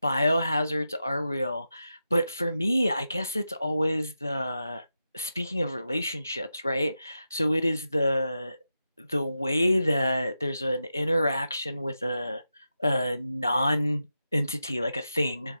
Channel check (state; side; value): inverted; both; correlation -0.89